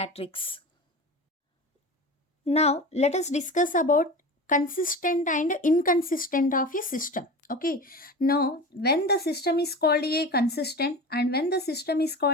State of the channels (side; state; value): both; normal; correlation 0.31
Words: Now let us discuss about consistent and inconsistent of a system. Okay, now when the system is called a consistent and when the system is